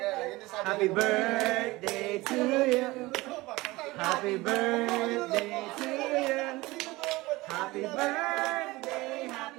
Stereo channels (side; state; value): left; quieter; 20.6 dB